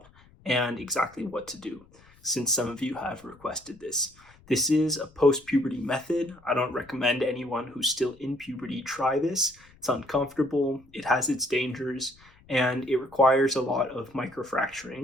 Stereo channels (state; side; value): noise; left; rumble, 27 dB below the sound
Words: and exactly what to do, since some of you have requested this. This is a post-puberty method. I don't recommend anyone who's still in puberty try this. It's uncomfortable, it has its dangers, and it requires a lot of